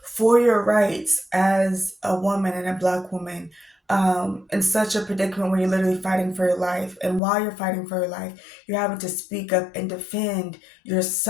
for your rights as a woman and a Black woman, in such a predicament where you're literally fighting for your life. And while you're fighting for your life, you're having to speak up and defend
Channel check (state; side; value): drops out; right; at 7.2 s